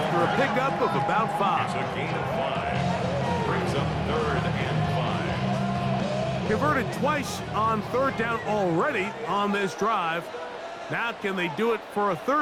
a pickup of about 5. It's a gain of 5. Brings up 3rd and 5. Converted twice on third down already on this drive. Now can they do it for a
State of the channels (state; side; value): identical; both; correlation 1.00